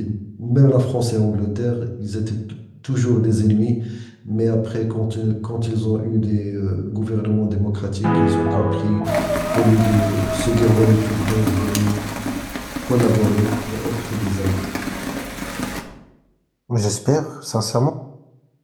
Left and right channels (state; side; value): identical; both; correlation 1.00